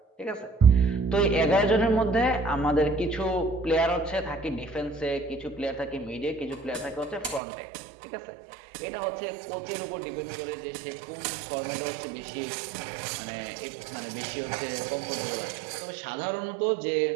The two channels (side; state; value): left; drops out; at 7.4 s